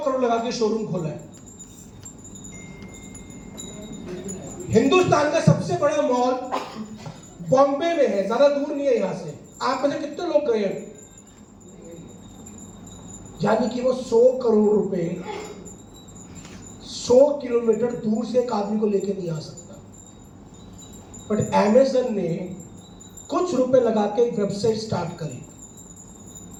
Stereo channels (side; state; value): both; identical; correlation 1.00